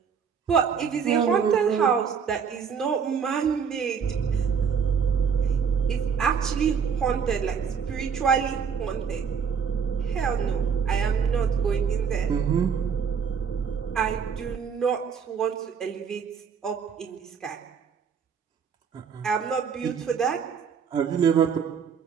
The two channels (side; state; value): left; quieter; 6.7 dB